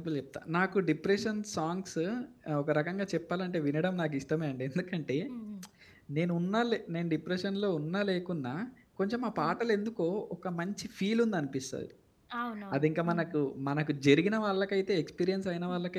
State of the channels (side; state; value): both; identical; correlation 1.00